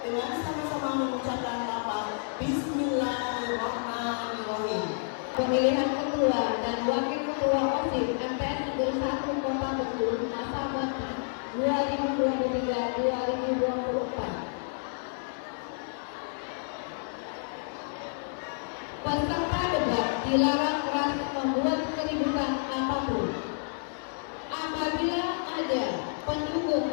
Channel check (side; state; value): right; silent; digital silence